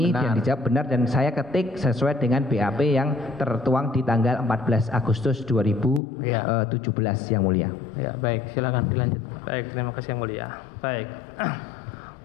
dan dijawab benar, dan saya ketik sesuai dengan BAP yang tertuang di tanggal 14 Agustus 2017 yang mulia. Ya, baik, silakan dilanjut. Baik, terima kasih yang mulia. Baik.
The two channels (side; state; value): right; drops out; at 6.0 s